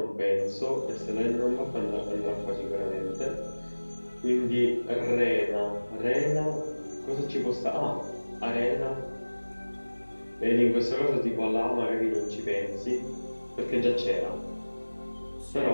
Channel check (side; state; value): both; inverted; correlation -1.00